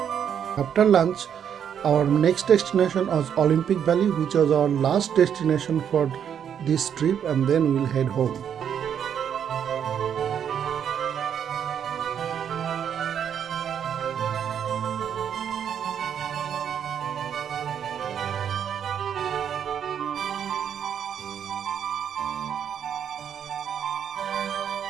After lunch, our next destination was Olympic Valley, which was our last destination for this trip, and then we'll head home.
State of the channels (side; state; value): left; quieter; 8.5 dB